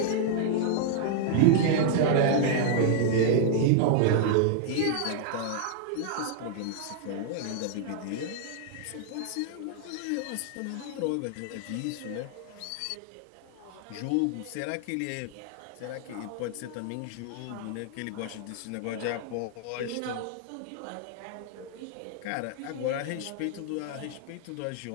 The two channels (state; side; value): different; both; correlation -0.01